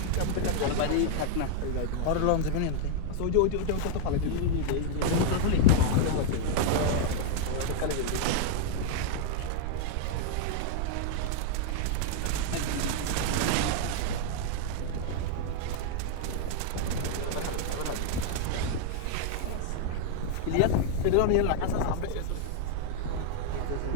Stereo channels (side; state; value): both; different; correlation 0.00